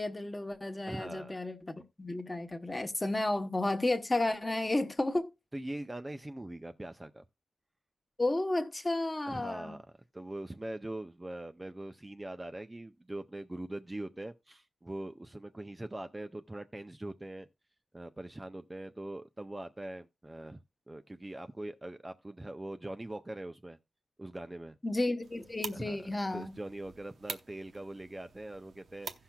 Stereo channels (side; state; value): both; normal; correlation 0.97